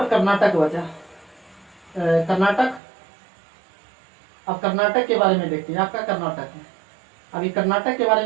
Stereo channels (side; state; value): left; drops out; at 2.8 s